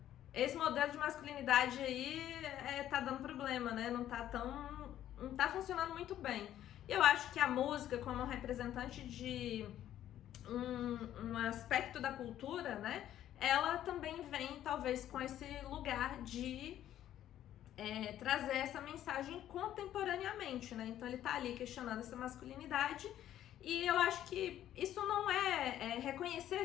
esse modelo de masculinidade aí tá dando problema, né? Não tá funcionando muito bem. E eu acho que a música, como representante de um aspecto da cultura, né? Ela também vem, talvez, com esse lugar de trazer essa mensagem contemporaneamente, né? Então ele tá ali questionando essa masculinidade. E eu acho que isso não é reconhecer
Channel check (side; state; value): right; quieter; 11.9 dB